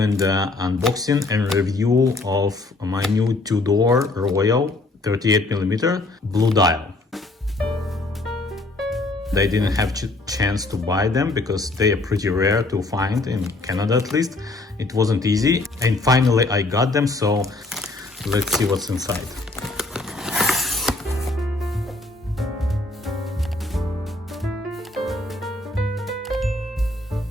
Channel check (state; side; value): quieter; right; 3.0 dB